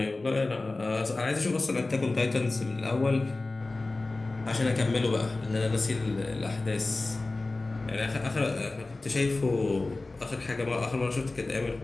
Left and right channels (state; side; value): quieter; right; 3.2 dB